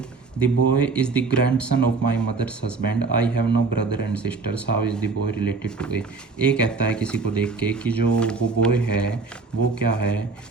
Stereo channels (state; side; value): quieter; left; 4.3 dB